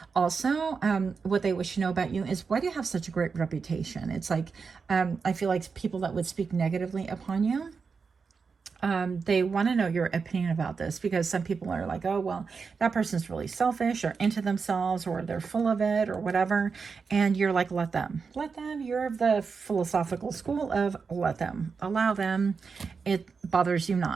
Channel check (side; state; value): left; quieter; 5.3 dB